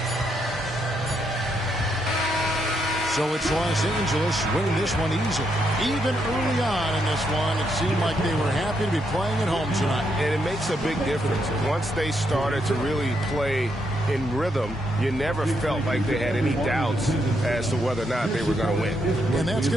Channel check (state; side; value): normal; both; correlation 0.78